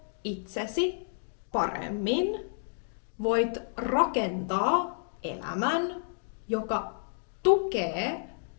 itsesi paremmin, voit rakentaa elämän, joka tukee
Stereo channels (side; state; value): right; silent; digital silence